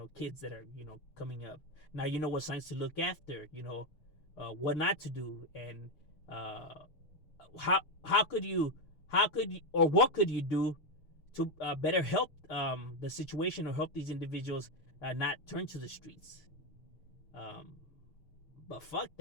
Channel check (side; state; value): right; late; 6.7 ms